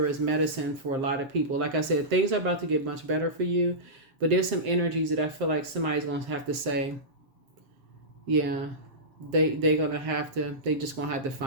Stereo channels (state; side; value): late; left; 7.5 ms